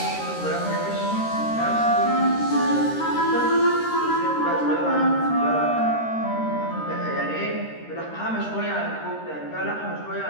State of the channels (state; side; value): late; right; 13 ms